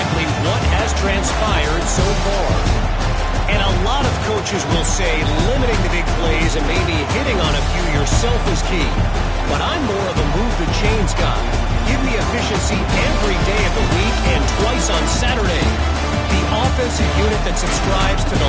what has transpired so far. And a lot of coaches will say limiting the big plays and maybe hitting on a few yourself is key. But I'm more of a move the chains guy. Give me efficiency every day of the week and twice on Saturday. The offensive unit that subscribes to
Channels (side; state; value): both; identical; correlation 1.00